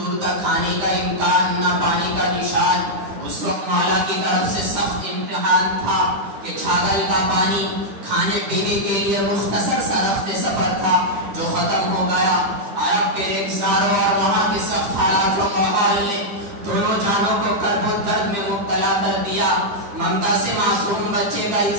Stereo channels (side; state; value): left; late; 9.5 ms